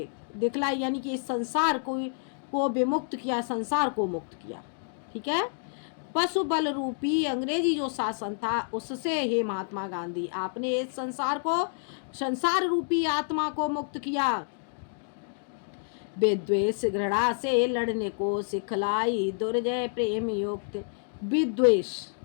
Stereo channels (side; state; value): right; silent; digital silence